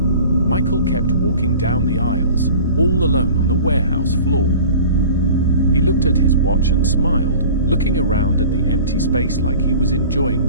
Michael kept walking down the aisles, all alone on the warehouse floor. He looked at his watch and smiled, looking around at the empty space like he was enjoying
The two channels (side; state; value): both; inverted; correlation -0.42